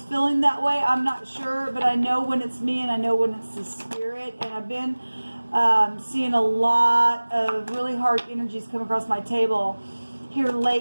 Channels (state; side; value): inverted; both; correlation -1.00